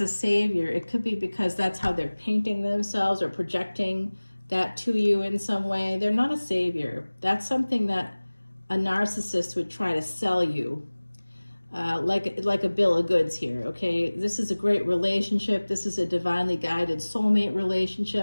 a savior, it could be because that's how they're painting themselves or projecting that to you in some way. They're not a savior. That's something that a narcissist would try to sell you, like a bill of goods here, okay? This is a great relationship. This is a divinely guided soulmate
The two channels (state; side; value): inverted; both; correlation -1.00